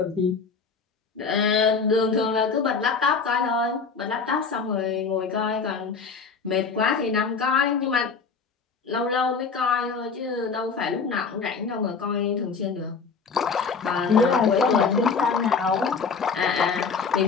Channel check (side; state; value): right; quieter; 5.2 dB